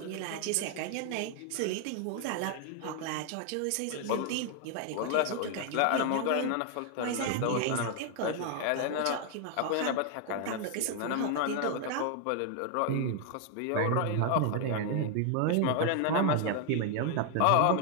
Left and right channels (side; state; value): both; different; correlation 0.00